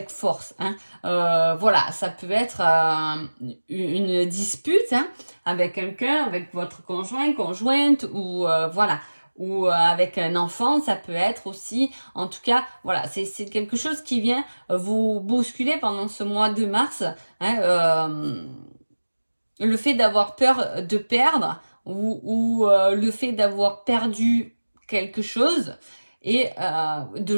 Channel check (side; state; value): both; inverted; correlation -1.00